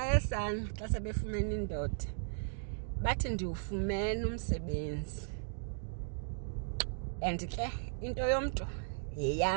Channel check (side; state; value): left; silent; digital silence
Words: sana xa sebefumene indoda, bathi ndiwufumene umsebenzi, and ke into yomntu